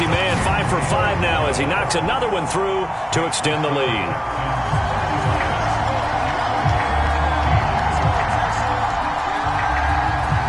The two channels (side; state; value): both; identical; correlation 1.00